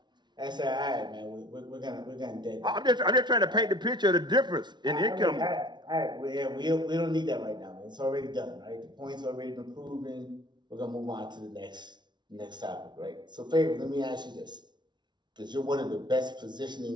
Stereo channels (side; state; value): left; late; 0.21 ms